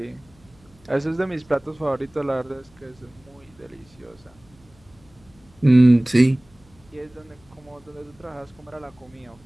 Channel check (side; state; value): left; noise; hum, 29 dB below the sound